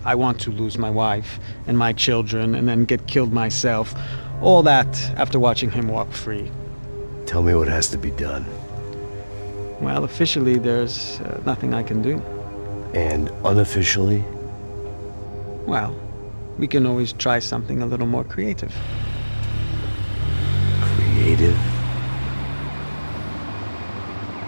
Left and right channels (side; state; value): both; inverted; correlation -1.00